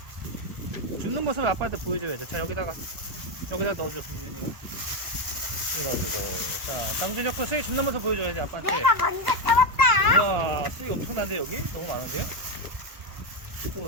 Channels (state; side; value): late; left; 1.3 ms